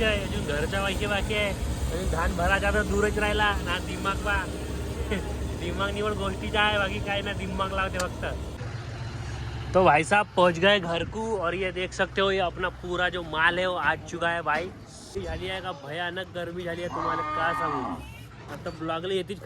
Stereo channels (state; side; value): identical; both; correlation 1.00